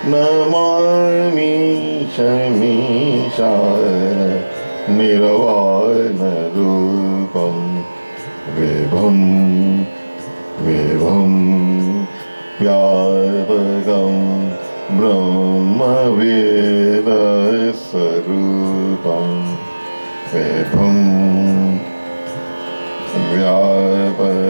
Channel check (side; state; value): both; inverted; correlation -1.00